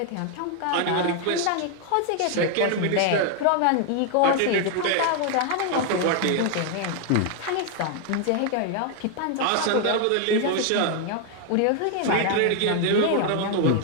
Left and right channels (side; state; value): both; different; correlation 0.00